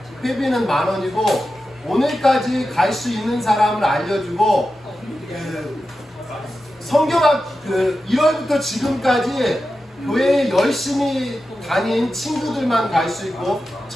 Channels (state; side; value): normal; both; correlation 0.91